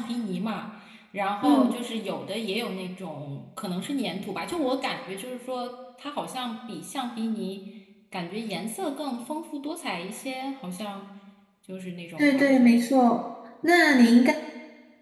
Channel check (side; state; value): both; identical; correlation 1.00